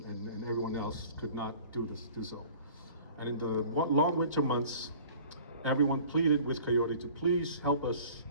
and everyone else could not do so. And in the long winter months, everyone pleaded with Coyote to please help us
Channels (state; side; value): inverted; both; correlation -0.47